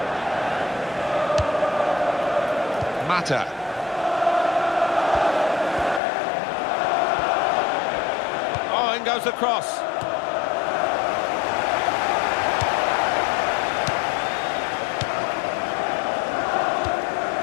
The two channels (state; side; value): drops out; right; at 6.0 s